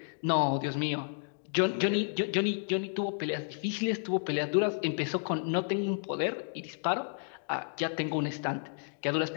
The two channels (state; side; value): silent; right; digital silence